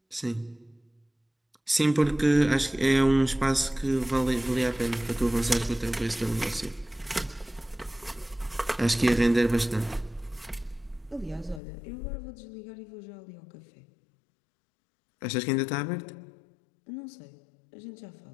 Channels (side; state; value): right; drops out; at 11.6 s